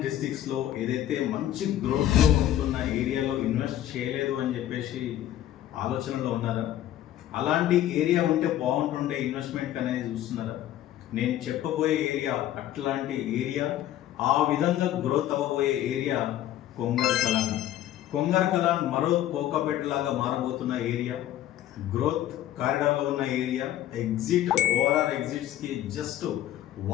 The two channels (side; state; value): right; quieter; 12.5 dB